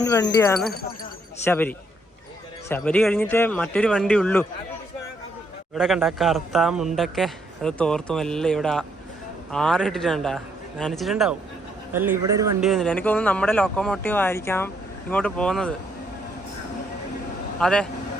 വണ്ടിയാണ് ശബരി. ശബരി കഴിഞ്ഞിട്ട് മറ്റൊരു വണ്ടി ഉള്ളൂ. ഇവിടെ കണ്ട കറുത്ത മുണ്ടൊക്കെ അത് തോർത്തും എല്ലാം ഇവിടെ ആറിട്ടിട്ടുണ്ടാ, നനച്ചിട്ടുണ്ടാവും. അല്ല, ഇവിടെ ഒരു വണ്ടി വരുന്നില്ല. എനിക്ക് തോന്നുന്നു നമ്മുടെ ലോക്കോമോട്ടീവ് ആയിരിക്കാം ഇങ്ങോട്ട് പോകുന്നത്. അതെ,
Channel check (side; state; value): both; normal; correlation 0.72